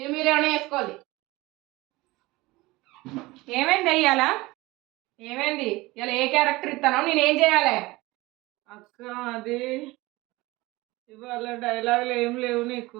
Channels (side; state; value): left; quieter; 20.8 dB